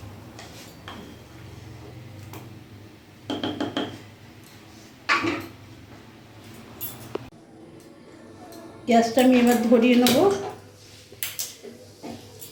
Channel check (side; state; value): both; identical; correlation 1.00